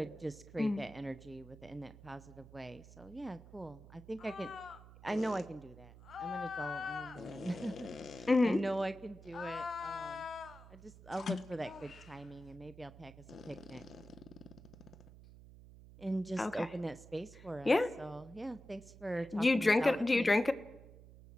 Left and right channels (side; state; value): right; noise; hum, 18 dB below the sound